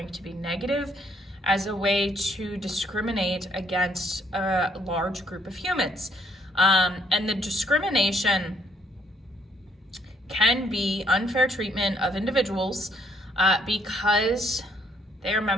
to be negative as a way to discriminate against a large group of humans. And the discrimination can be unfair treatment of individuals because they are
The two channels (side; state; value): both; normal; correlation 0.68